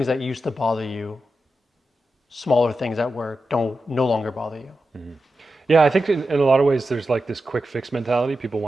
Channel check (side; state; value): both; normal; correlation 0.90